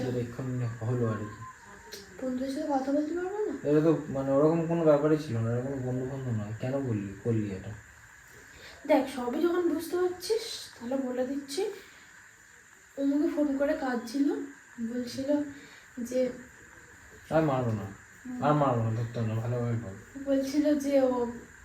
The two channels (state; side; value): identical; both; correlation 1.00